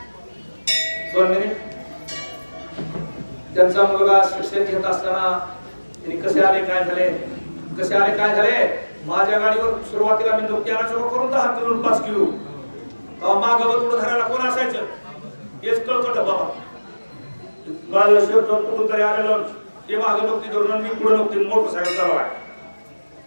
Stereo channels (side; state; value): both; inverted; correlation -1.00